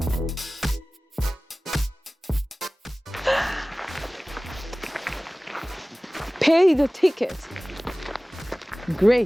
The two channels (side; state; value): both; normal; correlation 0.98